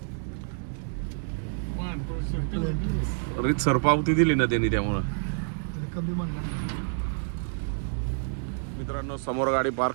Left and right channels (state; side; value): silent; left; digital silence